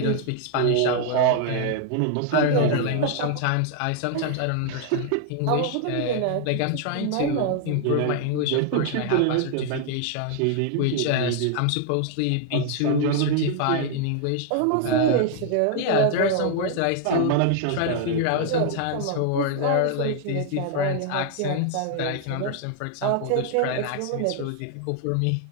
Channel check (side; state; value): both; different; correlation 0.00